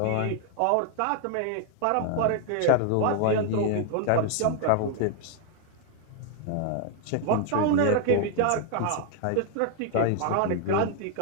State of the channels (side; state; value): both; different; correlation 0.00